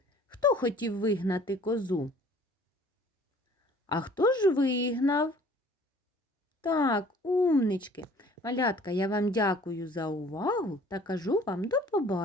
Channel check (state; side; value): normal; both; correlation 0.52